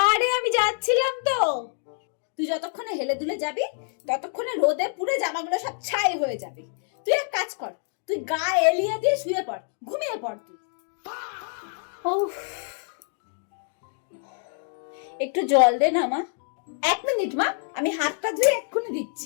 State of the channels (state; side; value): silent; right; 61 dB below the other